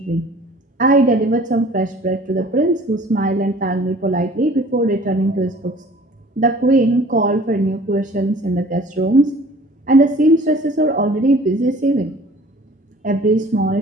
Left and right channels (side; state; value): both; normal; correlation 0.49